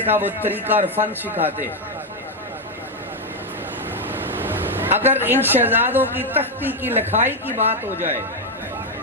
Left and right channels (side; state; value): both; normal; correlation 0.04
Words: کا وہ طریقہ اور فن سکھاتے ہیں۔ اگر ان شہزادوں کی تختی کی لکھائی کی بات ہو جائے